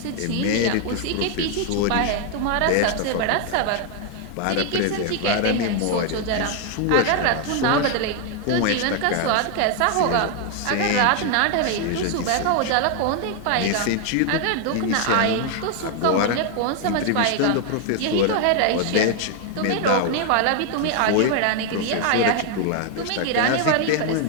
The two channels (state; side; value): different; both; correlation 0.00